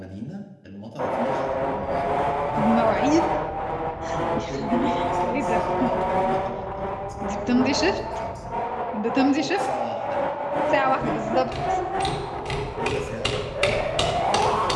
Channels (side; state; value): both; identical; correlation 1.00